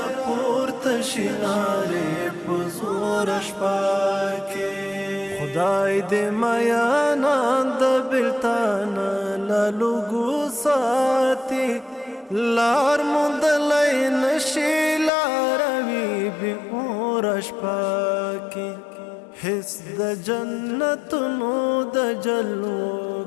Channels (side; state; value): right; drops out; at 15.1 s